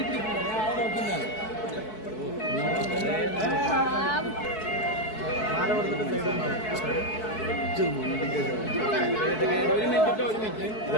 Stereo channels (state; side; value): late; right; 4.6 ms